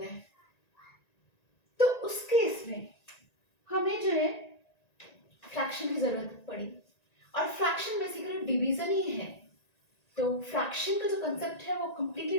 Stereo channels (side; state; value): right; late; 1.9 ms